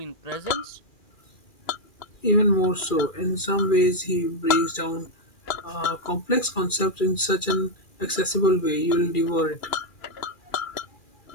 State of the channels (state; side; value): late; right; 2.4 ms